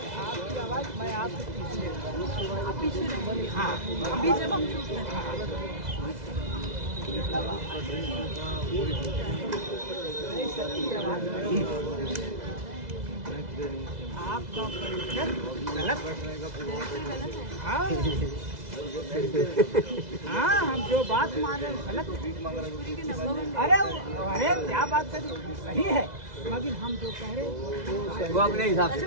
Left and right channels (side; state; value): left; late; 2.0 ms